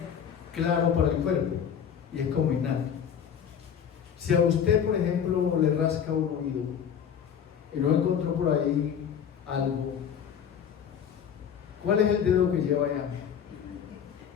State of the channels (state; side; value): quieter; right; 8.2 dB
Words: claro para el cuerpo y es como innato. Si a usted, por ejemplo, le rasca un oído y no encontró por ahí algo, ¿cuál es el dedo que lleva allá?